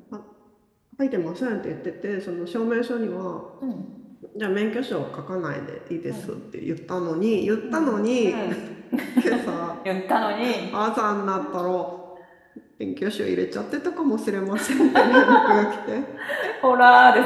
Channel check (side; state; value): both; identical; correlation 1.00